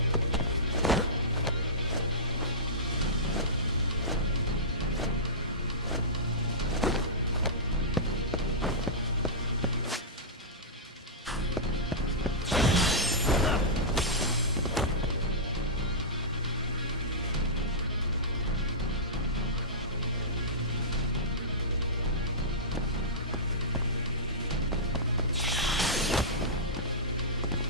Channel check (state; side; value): normal; both; correlation -0.16